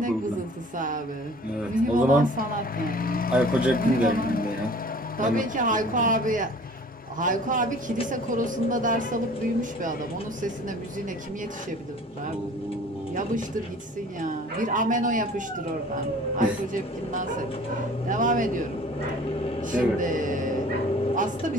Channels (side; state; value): both; normal; correlation 0.48